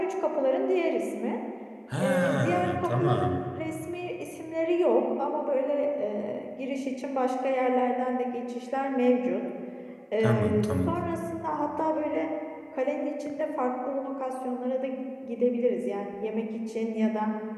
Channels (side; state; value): both; identical; correlation 1.00